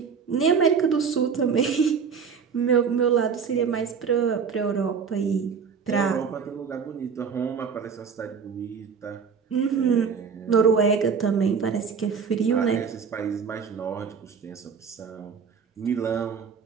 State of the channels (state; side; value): quieter; left; 6.2 dB